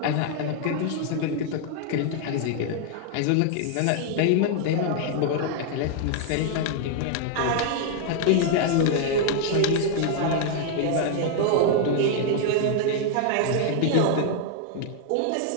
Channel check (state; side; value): different; both; correlation 0.00